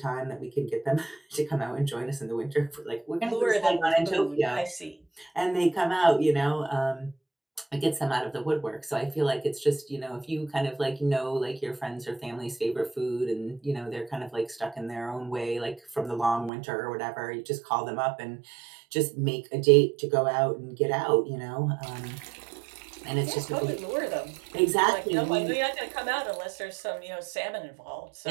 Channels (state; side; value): drops out; left; at 16.5 s